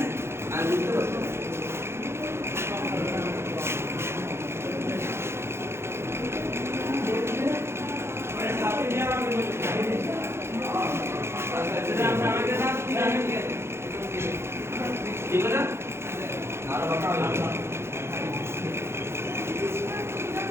আর বুঝতে পারছো ঠিক আছে আর বাকি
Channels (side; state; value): left; late; 0.12 ms